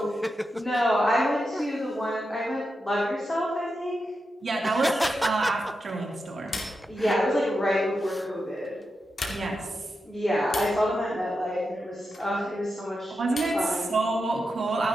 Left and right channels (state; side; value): normal; both; correlation 0.88